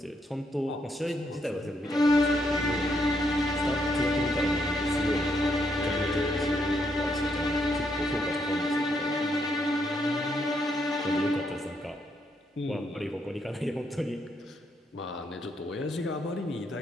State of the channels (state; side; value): normal; both; correlation 0.76